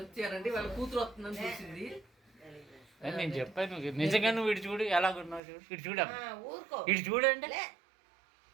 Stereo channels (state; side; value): drops out; left; at 5.4 s